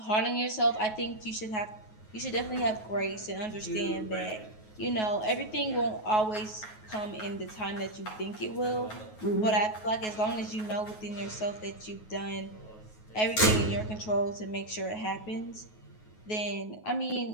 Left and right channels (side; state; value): right; late; 9.4 ms